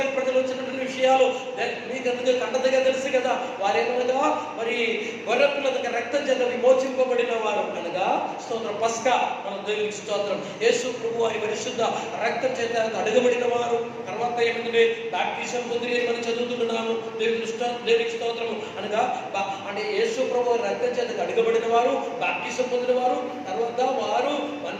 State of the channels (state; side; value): identical; both; correlation 1.00